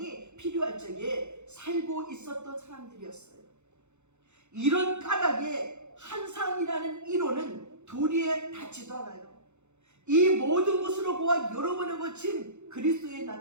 필요할 적에 살고 있었던 사람들이었어요. 이런 까닭에 환상이라는 이론은 도리에 닿지도 않아요. 이 모든 것으로 보아 여러 번에 거친 그리스도의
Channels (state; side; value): late; left; 0.83 ms